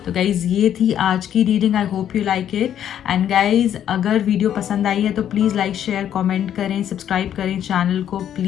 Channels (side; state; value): right; quieter; 10.1 dB